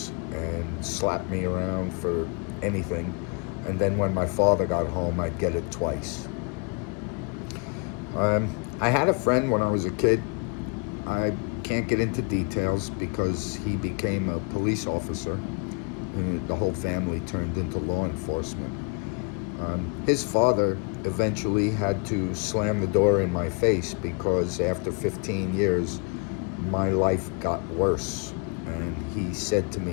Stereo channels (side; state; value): right; quieter; 33.7 dB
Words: and slap me around for anything, and then when my father got home I'd get it twice. I had a friend when I was a kid. I can't get into details because he became a police officer and the whole family turned into law enforcement. His father eventually had to slam the door in my face because after 15 years my life got worse, and he said to